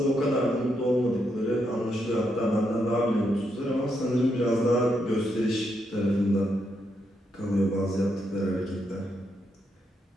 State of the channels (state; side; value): normal; both; correlation 0.80